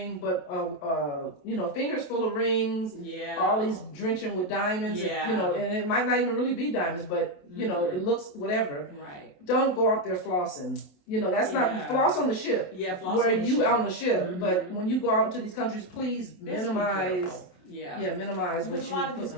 but fingers full of rings. Yeah. All these drenching with diamonds. Yeah. And it might not even really be diamonds, but it looks whatever. Right. Don't go out there flossing. That's not floss on the ship. Yeah, floss where on the you ship. On the ship. But when you go out into these countries, please minimize. Minimize what you. A lot of these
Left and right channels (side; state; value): right; late; 28 ms